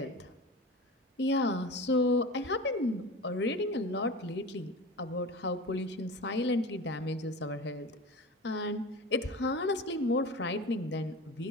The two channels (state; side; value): normal; both; correlation 0.32